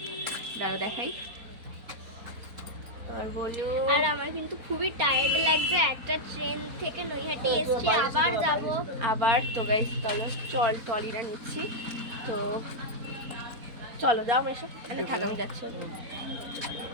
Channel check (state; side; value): late; left; 4.3 ms